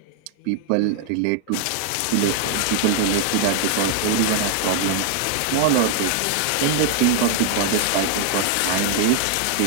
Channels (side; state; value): both; different; correlation 0.00